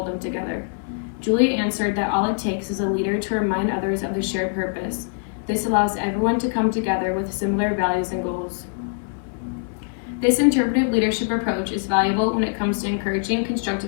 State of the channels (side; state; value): right; silent; 63 dB below the other